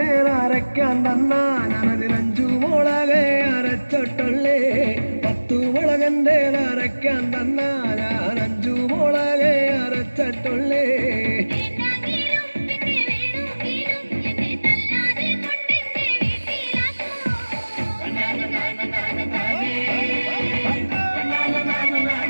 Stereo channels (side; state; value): both; inverted; correlation -1.00